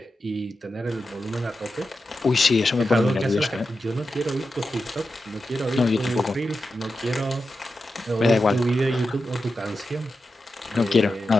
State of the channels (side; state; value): both; normal; correlation 0.90